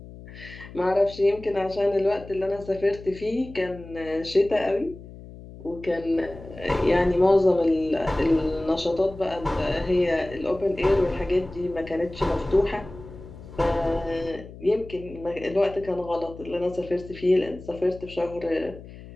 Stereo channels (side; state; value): left; noise; hum, 16 dB below the sound